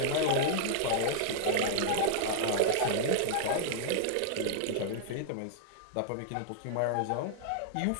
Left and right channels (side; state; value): both; different; correlation -0.01